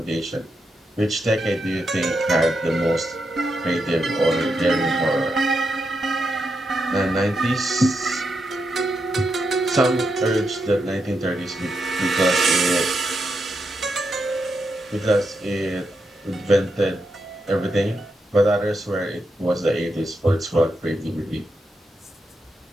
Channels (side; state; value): both; normal; correlation 0.84